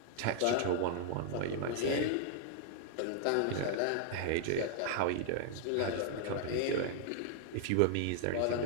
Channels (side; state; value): both; different; correlation -0.01